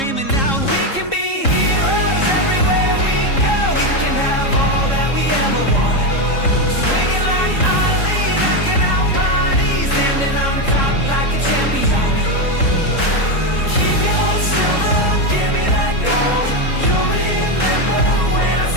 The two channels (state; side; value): late; right; 3.7 ms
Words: out, we can be heroes everywhere we go. We can have all that we ever want. Swinging like Ali, knocking out bodies, standing on top like a champion. Keep your silver, give me that gold. You'll remember when I